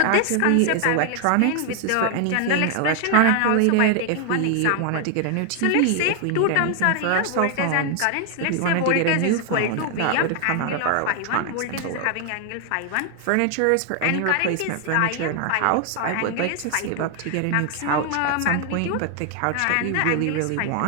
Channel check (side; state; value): both; different; correlation 0.00